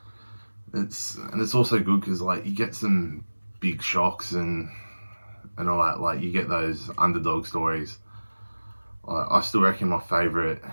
it's also good because, like, you get some big shocks and all that. Like, you get those underdog stories. I still reckon my favourite,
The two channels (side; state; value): both; inverted; correlation -1.00